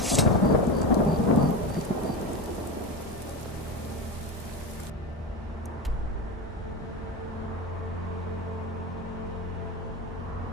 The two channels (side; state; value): both; normal; correlation 0.21